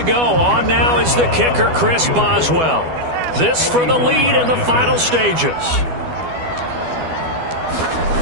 go. On now is the kicker, Chris Boswell. This for the lead in the final stages.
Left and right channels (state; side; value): late; left; 12 ms